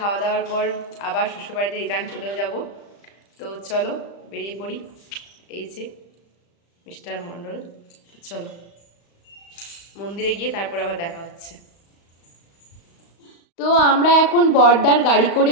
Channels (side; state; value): right; late; 35 ms